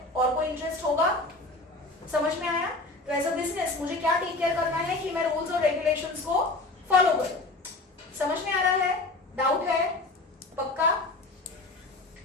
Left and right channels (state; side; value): quieter; right; 3.0 dB